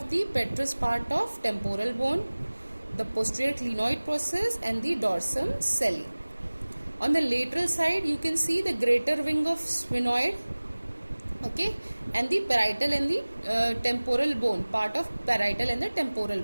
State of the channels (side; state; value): both; inverted; correlation -1.00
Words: the petrous part of temporal bone, the posterior clinoid process, and the dorsum celli. On the lateral side you can see the greater wing of sphenoid, okay, and the parietal and the temporal bone, part of parietal and the temporal